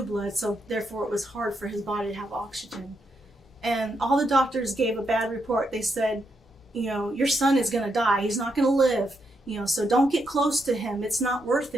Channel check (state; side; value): normal; both; correlation 0.81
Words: blood, so therefore it was hard for his body to have oxygen. And all the doctors gave a bad report. They said, your son is going to die. He's not going to live. So don't get close to him. It's not worth